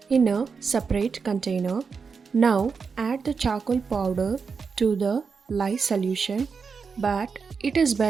in a separate container. Now, add the charcoal powder to the lye solution, but it is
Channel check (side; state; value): left; quieter; 5.4 dB